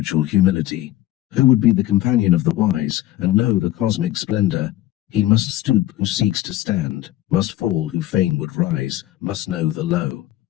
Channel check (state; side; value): quieter; right; 14.9 dB